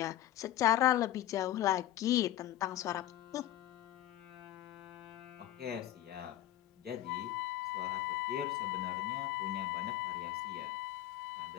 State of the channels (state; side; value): quieter; right; 13.3 dB